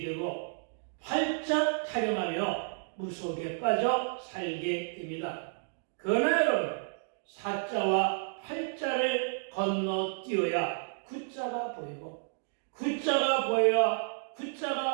되고 활짝 타령하며 무속에 빠져 살게 됩니다. 그러나 여러분, 사자와 활자를 건너뛰어야 구자가 보이고, 구자가 보여야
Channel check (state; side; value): silent; left; digital silence